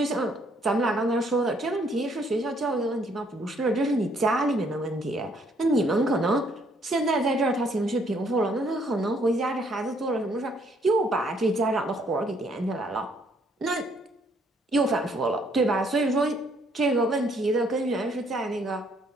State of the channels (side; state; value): both; normal; correlation 0.67